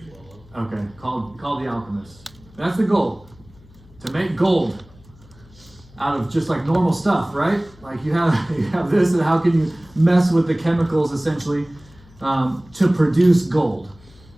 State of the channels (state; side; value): noise; left; hum, 25 dB below the sound